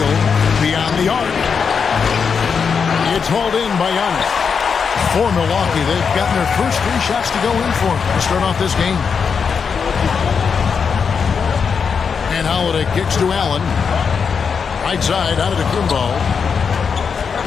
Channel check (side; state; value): right; quieter; 6.1 dB